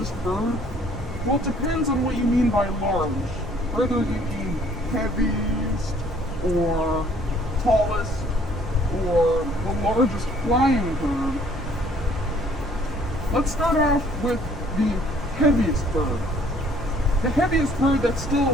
bird? Well, it depends on what you mean by large. Whether you mean heaviest, or tallest, or the largest flying bird. Let's start off with the heaviest bird. The heaviest bird that's still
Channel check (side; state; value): both; normal; correlation 0.59